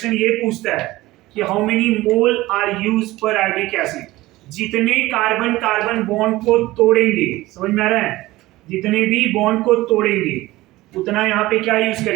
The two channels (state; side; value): quieter; left; 18.2 dB